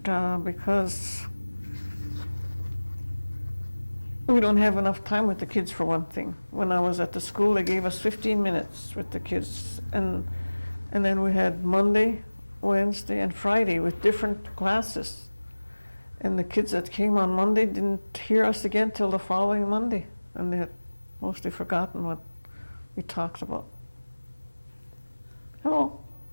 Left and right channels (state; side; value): inverted; both; correlation -1.00